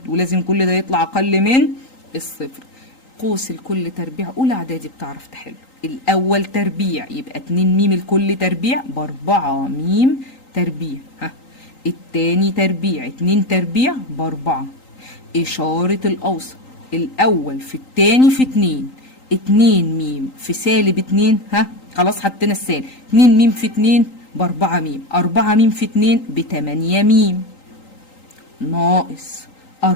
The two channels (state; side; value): late; right; 3.8 ms